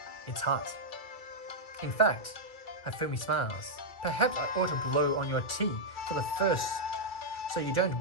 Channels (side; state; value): right; late; 2.3 ms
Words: It's hot. In fact, Hifumi smiles. Perhaps I ought to blow on your tea for the first, so you don't